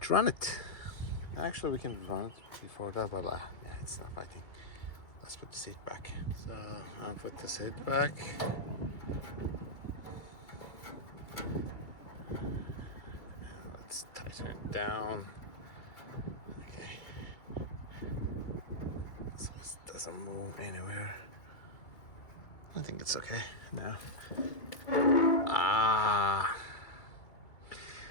run it. Actually, we can run it before that, but yeah, it's not fighting. Let's put the seat back. So I'll put the seat back. Let's tighten it down. Okay. So this doesn't move anywhere. I think it's okay now.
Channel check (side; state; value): right; late; 2.3 ms